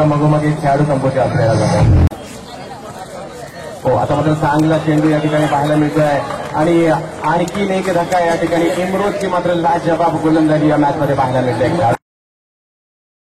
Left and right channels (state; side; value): identical; both; correlation 1.00